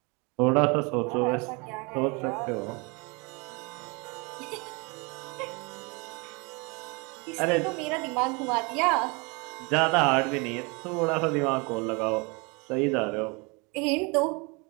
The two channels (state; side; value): quieter; left; 29.4 dB